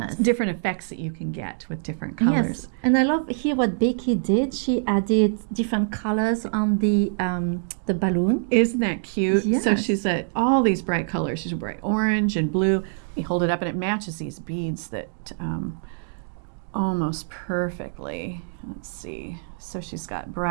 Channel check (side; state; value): left; silent; digital silence